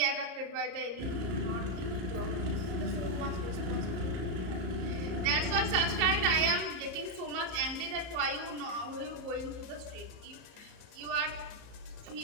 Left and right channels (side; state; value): left; late; 34 ms